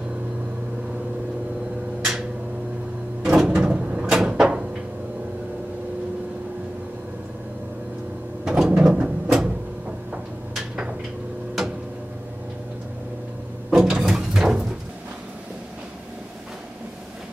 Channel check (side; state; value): both; normal; correlation 0.96